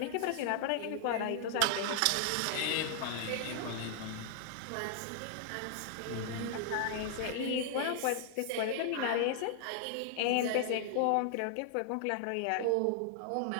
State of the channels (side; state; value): both; different; correlation -0.01